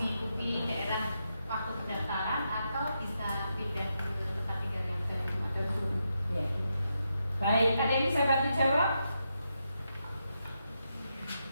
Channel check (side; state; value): both; inverted; correlation -0.84